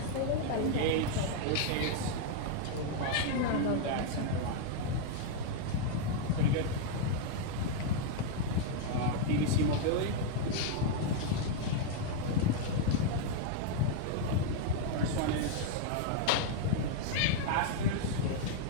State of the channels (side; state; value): both; different; correlation -0.01